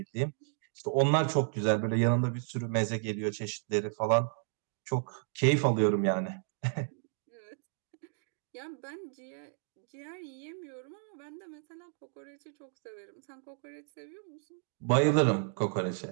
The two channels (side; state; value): left; silent; digital silence